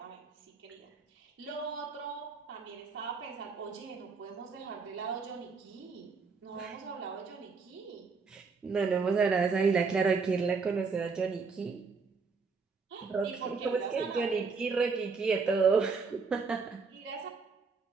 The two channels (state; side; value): quieter; left; 4.9 dB